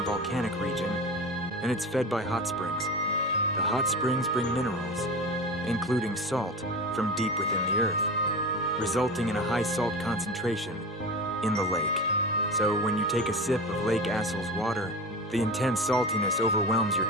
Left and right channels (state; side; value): normal; both; correlation 0.29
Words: volcanic region, and it's fed by hot springs. The hot springs bring minerals, including salt, from deep within the earth, resulting in a high salt concentration in the lake. So when you take a sip of Lake Assal's water, the intense saltiness overwhelms your